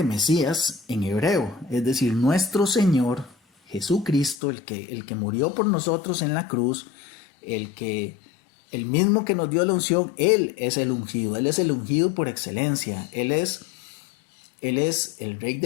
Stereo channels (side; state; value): right; drops out; at 4.4 s